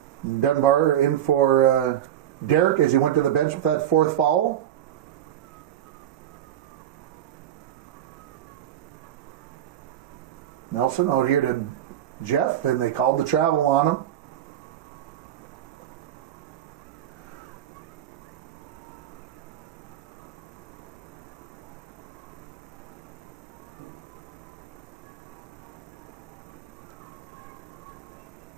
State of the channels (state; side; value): quieter; left; 11.0 dB